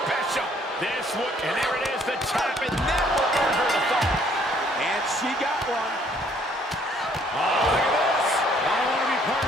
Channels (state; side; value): normal; both; correlation 0.63